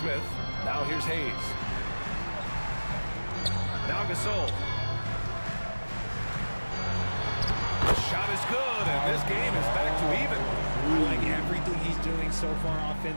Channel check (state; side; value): inverted; both; correlation -1.00